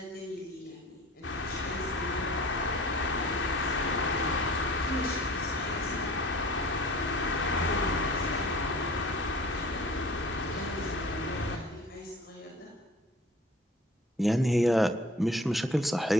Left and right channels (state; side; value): normal; both; correlation 0.46